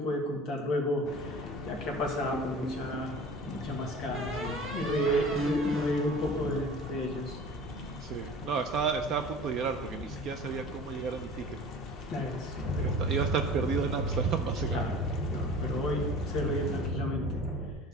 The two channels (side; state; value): both; normal; correlation 0.41